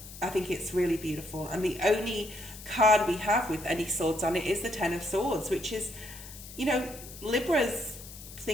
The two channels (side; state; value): left; noise; hiss, 15 dB below the sound